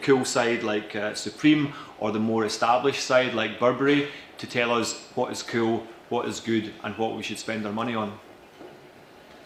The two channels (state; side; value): identical; both; correlation 1.00